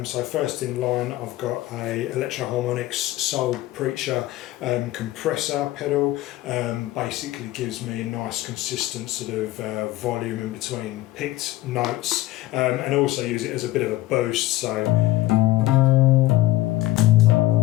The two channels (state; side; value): quieter; right; 16.3 dB